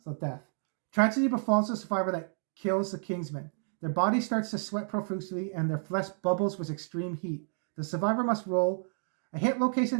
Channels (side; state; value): left; silent; digital silence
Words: So, death. Tragedy befalls the survivor that kills the Kingsman. Their body starts to sweat profusely and their flesh bubbles with extreme heat. The survivor must roll a hit